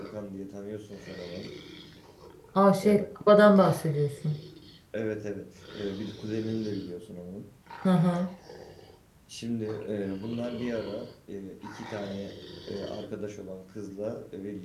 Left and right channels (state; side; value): identical; both; correlation 1.00